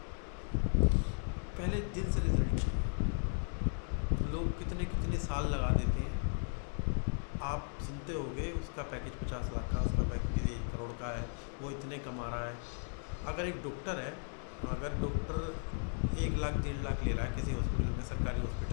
पहले दिन से रिजल्ट चाहिए। लोग कितने कितने साल लगा देते हैं। आप सुनते होंगे उसका पैकेज 50 लाख का, उसका पैकेज 1 करोड़ का है, वो इतने कमा रहा है। अगर एक डॉक्टर है, अगर डॉक्टर 1 लाख 1.5 लाख ले रहा है किसी हॉस्पिटल में, सरकारी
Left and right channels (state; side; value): silent; right; 54 dB below the other